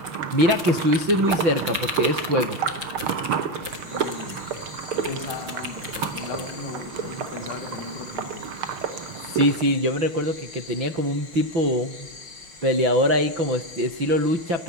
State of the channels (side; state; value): left; late; 5.7 ms